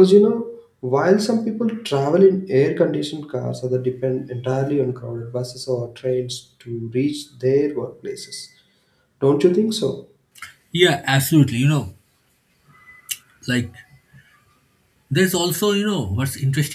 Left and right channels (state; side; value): identical; both; correlation 1.00